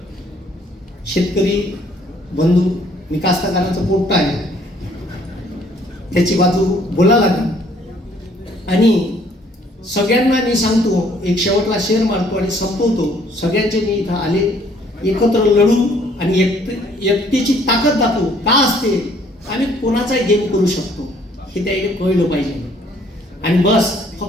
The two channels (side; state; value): both; normal; correlation 0.61